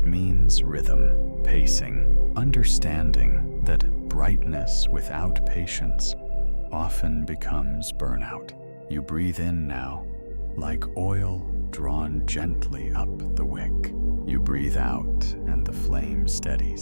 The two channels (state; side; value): inverted; both; correlation -1.00